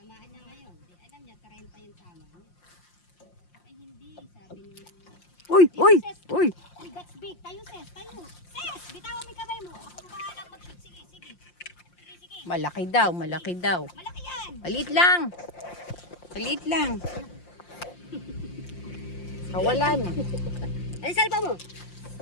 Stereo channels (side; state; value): right; late; 5.7 ms